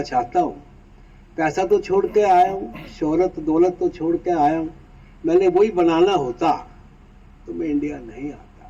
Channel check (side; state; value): both; identical; correlation 1.00